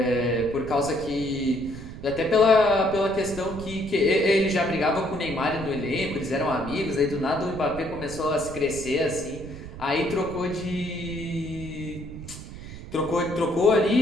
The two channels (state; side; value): noise; right; rumble, 12 dB below the sound